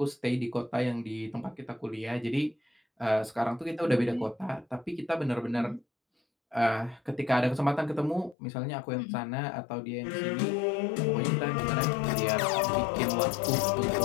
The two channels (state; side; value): drops out; right; at 8.3 s